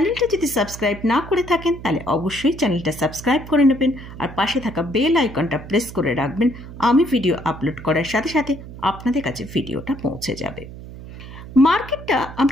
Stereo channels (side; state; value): right; noise; hum, 14 dB below the sound